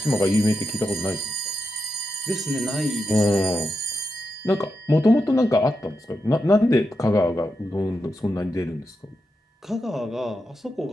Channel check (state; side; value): normal; both; correlation 0.87